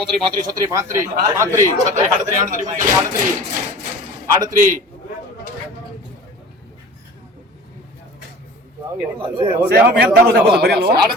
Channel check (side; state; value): both; normal; correlation 0.41